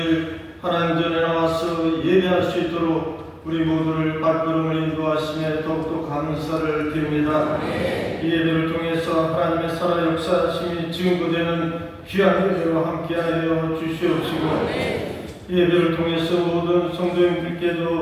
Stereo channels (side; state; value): both; identical; correlation 1.00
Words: 하나님 전에 나와서 예배할 수 있도록 우리 모두를 발걸음을 인도하심에 더욱더 감사를 드립니다. 이 예배를 통해서 하나님의 살아 역사하심이 증거되는 귀한 예배로 함께하여 주시옵시고 이 예배를 통해서 모든